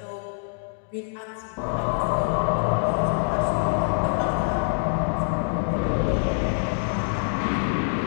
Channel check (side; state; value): right; silent; digital silence